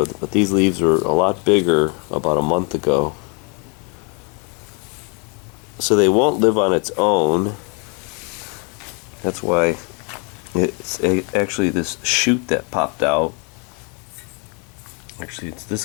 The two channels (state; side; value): quieter; right; 35.6 dB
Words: But these leaves were a lot bigger about a month ago, so they won't live on its own. That's why it's actually this shoot that popped out. Actually, it's this